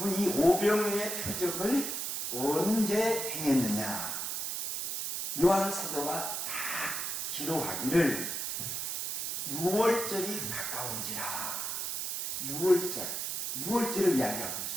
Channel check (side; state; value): right; noise; hiss, 2 dB below the sound